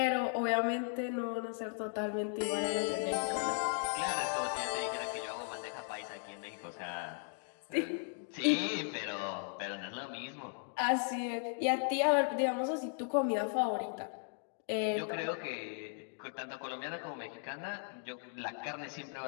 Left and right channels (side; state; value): right; silent; 53 dB below the other